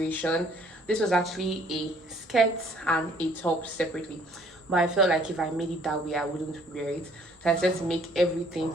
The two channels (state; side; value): normal; both; correlation 0.59